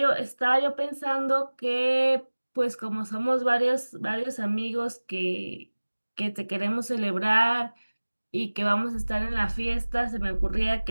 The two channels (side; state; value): both; inverted; correlation -1.00